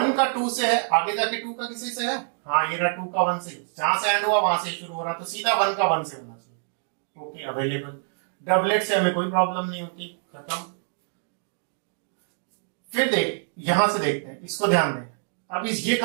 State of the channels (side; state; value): left; silent; 61 dB below the other